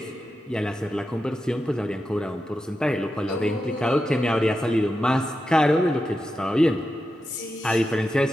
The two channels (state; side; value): normal; both; correlation 0.89